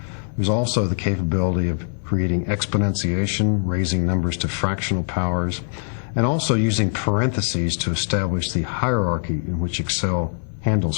There's also the capability of creating exponentiation, raising numbers to fractional powers, and also using parentheses to establish the hierarchy in which Excel handles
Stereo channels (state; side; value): silent; right; digital silence